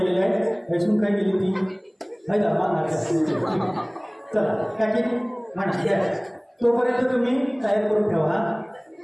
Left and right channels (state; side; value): identical; both; correlation 1.00